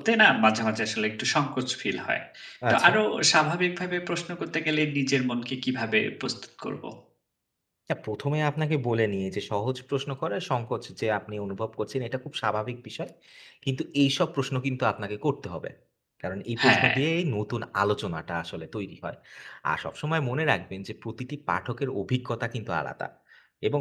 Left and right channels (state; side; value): identical; both; correlation 1.00